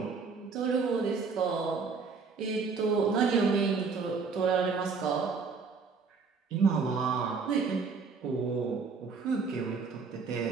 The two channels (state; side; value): quieter; left; 5.0 dB